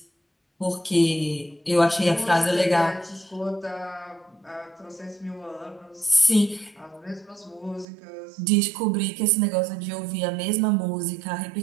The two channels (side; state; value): left; drops out; at 7.9 s